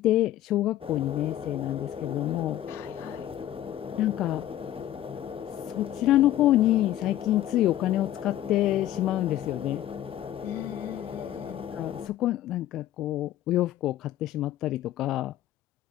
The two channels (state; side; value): quieter; right; 13.0 dB